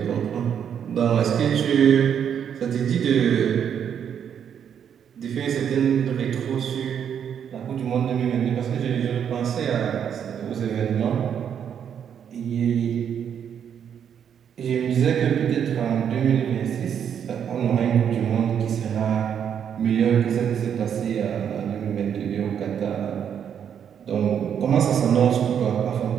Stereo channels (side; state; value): left; quieter; 8.4 dB